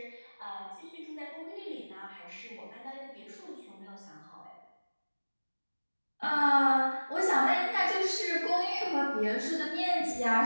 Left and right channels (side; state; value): both; inverted; correlation -1.00